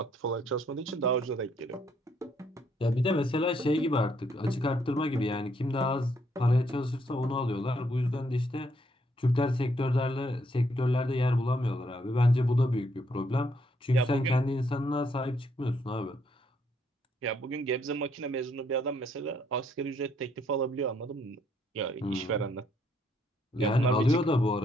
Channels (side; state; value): both; normal; correlation 0.71